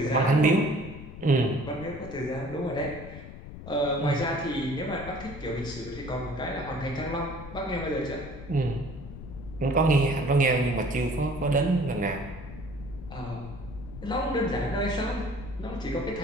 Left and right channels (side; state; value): left; noise; rumble, 13 dB below the sound